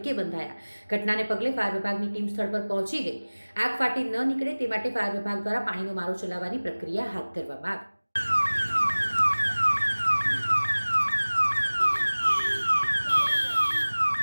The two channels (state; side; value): inverted; both; correlation -1.00